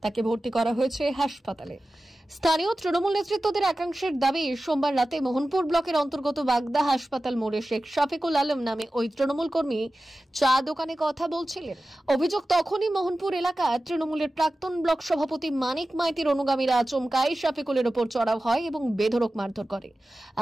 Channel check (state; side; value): normal; both; correlation 0.95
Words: তাকে ভর্তি করা হয়েছে হাসপাতালে। স্থানীয় তৃণমূল নেতৃত্বদের একাংশের দাবি, সোমবার রাতে মোহনপুর ব্লকের অন্তর্গত বাগদা হাসপাতাল মোড়ে শেখ শফিকুল আলম নামে ওই তৃণমূল কর্মী চা দোকানে কথা বলছিলেন। অভিযোগ, তখনই মোহনপুর এলাকা তৃণমূলের প্রাক্তন ব্লক সভাপতি মানিক মাইতির অনুগামীরা আচমকাই শফিকুলের ওপর চড়াও হয় এবং বেধড়ক মারধর করে।